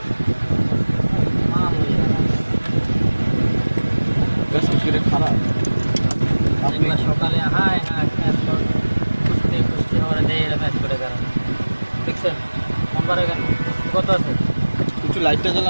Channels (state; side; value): inverted; both; correlation -1.00